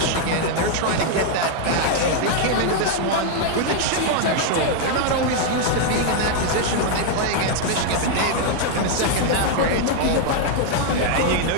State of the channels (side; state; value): both; different; correlation 0.00